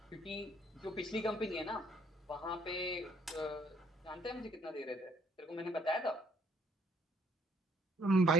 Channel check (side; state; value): both; normal; correlation 0.65